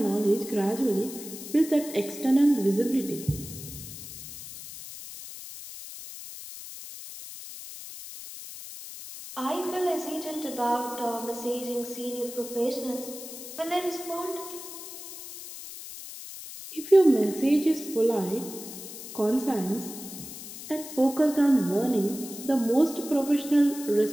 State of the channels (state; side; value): noise; left; hiss, 12 dB below the sound